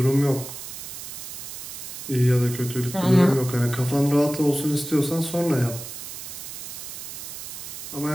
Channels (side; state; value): right; noise; hiss, 10 dB below the sound